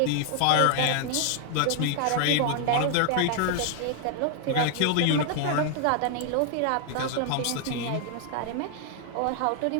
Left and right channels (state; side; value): different; both; correlation 0.00